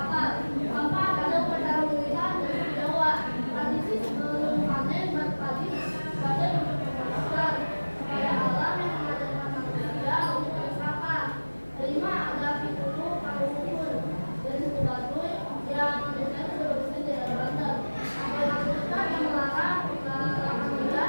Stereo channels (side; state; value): both; inverted; correlation -1.00